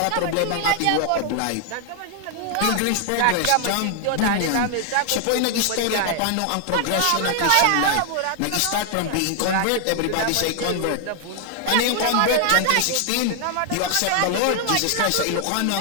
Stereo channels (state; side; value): different; both; correlation 0.00